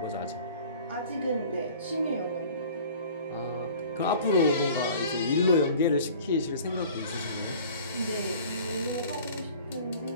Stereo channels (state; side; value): inverted; both; correlation -0.46